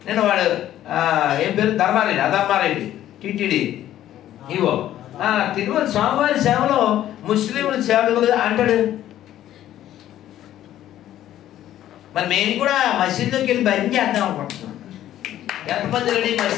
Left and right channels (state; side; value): quieter; right; 12.5 dB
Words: నేను వాడు ఏం పేరు, అధర్మారెడ్డి టిటిడి ఇవో తిరుమల స్వామివారి సేవలో ముస్లింల సేవలు అంటాడు. మరి మేము కూడా మసీదులోకి వెళ్ళి భజన చేద్దాం అనుకుంటున్నాం. ఎంతమంది రెడీ